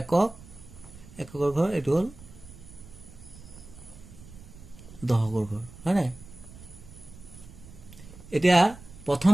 একক এককৰ ঘৰ এটো হল দহকৰ ঘৰ হয় না এতিয়া প্ৰথম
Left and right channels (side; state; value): right; noise; rumble, 18 dB below the sound